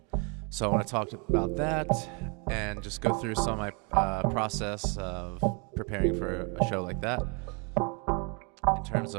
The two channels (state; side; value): quieter; left; 34.6 dB